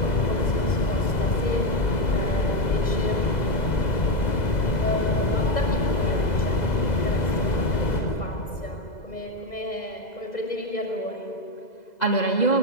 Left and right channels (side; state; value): right; late; 2.0 ms